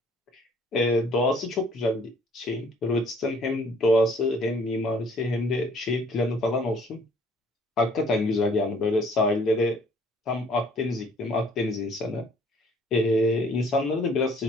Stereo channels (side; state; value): both; normal; correlation 0.58